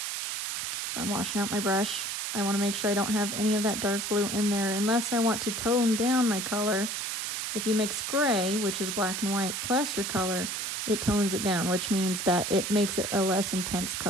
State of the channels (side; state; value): right; noise; hiss, 3 dB below the sound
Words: So I'm washing out my brush. I want to make sure I don't have any of that dark blue in there unless I want to tone down my color. If you mix gray, which is black and white, plus your color, it tones it down, which means that it makes it a less intense